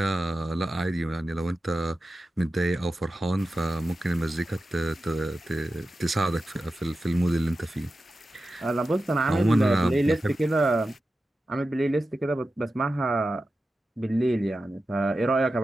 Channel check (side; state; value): both; normal; correlation 0.92